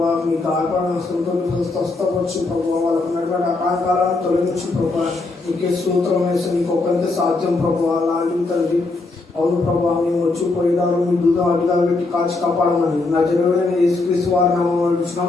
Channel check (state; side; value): quieter; right; 3.4 dB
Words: మీ కార్యక్రమంతో స్వస్థపరచు ప్రభావ. వాళ్ళకు ఉన్నటువంటి ఆటంకాలను తొలగించు ప్రభావ. నీకే స్తోత్రం వేసి నీకు ఒక్కరికే సాధ్యం ప్రభావ. అలాంటి తండ్రి అవును ప్రభావ, మేము వచ్చి పోయేదారు మీ దూతం అడ్డుగా పెట్టి కాచి కాపాడమని నా జరుగుడైన యేసుక్రీస్తు వారి